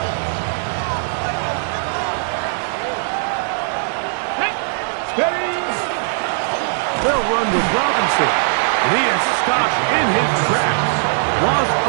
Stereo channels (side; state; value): left; silent; digital silence